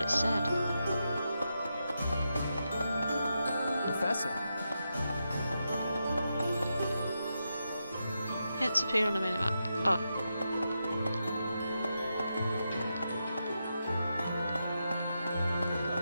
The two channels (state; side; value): inverted; both; correlation -0.86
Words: said. Professor. Hints appear on the minimap. Oh.